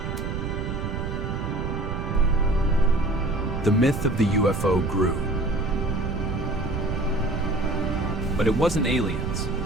The myth of the UFO grew. But it wasn't aliens.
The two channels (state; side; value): noise; right; rumble, 3 dB below the sound